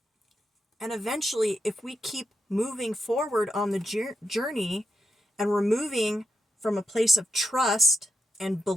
And eventually, if we keep moving forward on the journey and we're moving from a place of trust and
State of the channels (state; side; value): normal; both; correlation 0.85